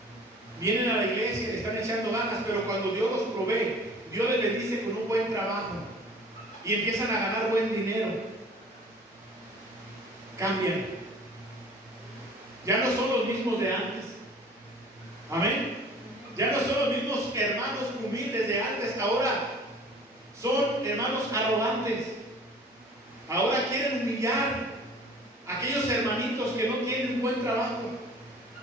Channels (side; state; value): both; normal; correlation 0.47